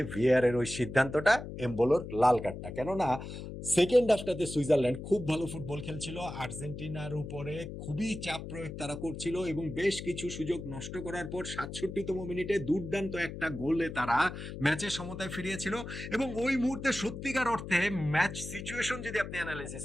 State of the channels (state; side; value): noise; left; hum, 9 dB below the sound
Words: ভিআর এর ওই সিদ্ধান্তটা, এমবোলোর লাল কার্ডটা। কেননা সেকেন্ড হাফটাতে সুইজারল্যান্ড খুব ভালো ফুটবল খেলছিল, আর্জেন্টিনার উপরে খুবই চাপ প্রয়োগ তারা করছিল এবং বেশ কিছু সুযোগ নষ্ট করার পর 67তম মিনিটে দুর্দান্ত একটা গোলে তারা ম্যাচের সমতায় ফিরিয়েছিল। এবং ওই মুহূর্তে সত্যিকার অর্থে ম্যাচ সিচুয়েশন যদি আপনি অ্যানালাইসিস